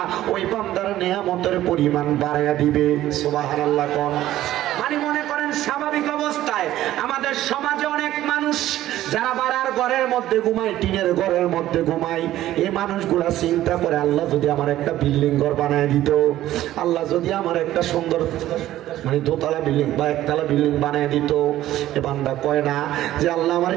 ওই বান্দার নিয়ামতের পরিমাণ বাড়ায়া দিবে। সুবহানাল্লাহ কোন। মানে মনে করেন স্বাভাবিক অবস্থায় আমাদের সমাজে অনেক মানুষ যারা বাড়ার ঘরের মধ্যে ঘুমায়, টিনের ঘরের মধ্যে ঘুমায়, এই মানুষগুলা চিন্তা করে আল্লাহ যদি আমার একটা বিল্ডিং ঘর বানায় দিত, আল্লাহ যদি আমার একটা সুন্দর মানে দোতলা বিল্ডিং বা একতলা বিল্ডিং বানিয়ে দিত। এ বান্দা কয় না যে আল্লাহ আমার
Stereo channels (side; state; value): left; quieter; 13.9 dB